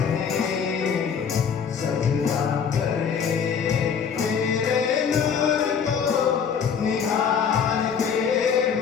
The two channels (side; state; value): right; quieter; 6.9 dB